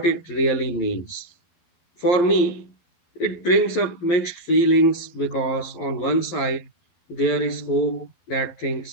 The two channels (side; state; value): right; late; 12 ms